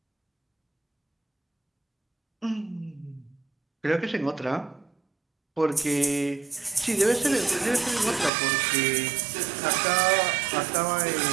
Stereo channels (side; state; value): left; drops out; at 8.3 s